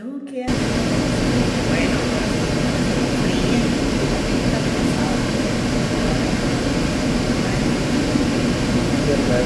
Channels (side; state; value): both; identical; correlation 1.00